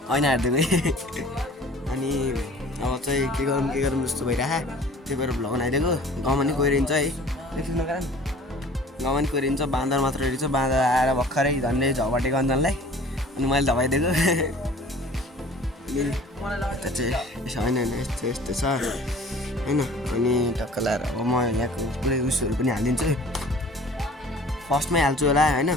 ऐना हेरिदिनु अनि अब चाहिँ के गरौँ जस्तो भइरहेको त्यही भएर भ्लग बनाइदिएको। गाउँमा नि कोइरिन्छ है एकछिन कारण गाउँमा नि कोइरिन्छ बाँदर मात्र हेरिन्छ। बाँदर आएर भर्खरै झन्डै झपाटेको अन्जनलाई अनि मैले धपाइदिएको अनि त्यो चाहिँ यसो होइन यस्तो छ होइन। अनि टक्क लाएर अब म यहाँको पुरै उयोहरू पनि हालिदिन्छु। फर्स्टमै हाल्छु होला होइन।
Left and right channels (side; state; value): both; normal; correlation 0.48